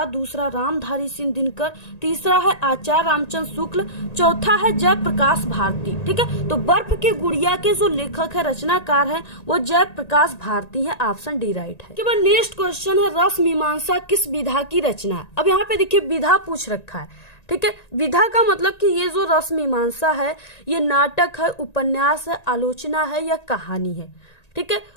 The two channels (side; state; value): right; late; 1.9 ms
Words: दूसरा रामधारी सिंह दिनकर, तीसरा है आचार्य रामचंद्र शुक्ल, चौथा है जयप्रकाश भारती, ठीक है। तो बर्फ की गुड़िया के जो लेखक है, रचनाकार है, वो जयप्रकाश भारती है, ऑप्शन डी राइट है। के बाद नेक्स्ट क्वेश्चन है रस मीमांसा किस विधा की रचना है? अब यहाँ पे देखिए विधा पूछ रखा है, ठीक है। विधा का मतलब कि ये जो रस मीमांसा है ये नाटक है, उपन्यास है, आलोचना है या कहानी है, ठीक है।